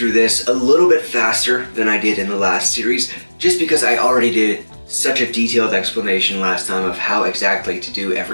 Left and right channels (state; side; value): inverted; both; correlation -1.00